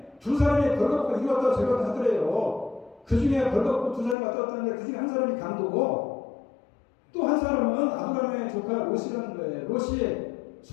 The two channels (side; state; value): right; drops out; at 4.2 s